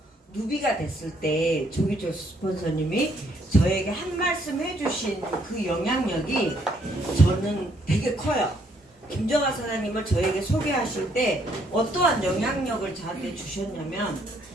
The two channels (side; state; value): both; normal; correlation 0.69